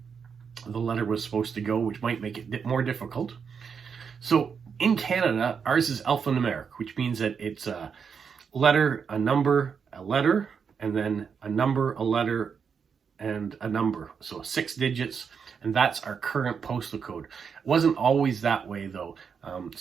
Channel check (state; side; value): quieter; left; 6.4 dB